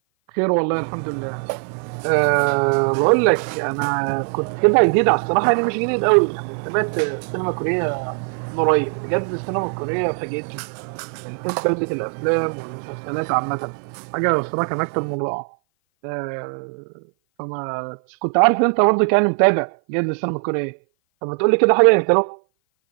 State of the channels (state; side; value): silent; left; 55 dB below the other